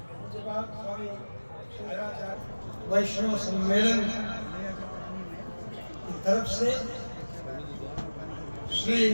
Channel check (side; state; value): both; inverted; correlation -1.00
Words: उसके बाद स्वामी शंकराचार्य वैष्णव सम्मेलन की तरफ से श्री